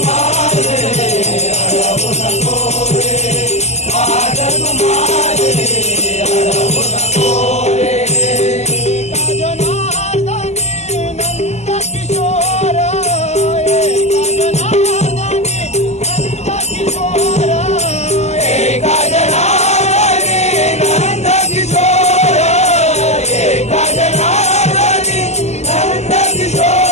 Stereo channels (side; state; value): right; late; 0.33 ms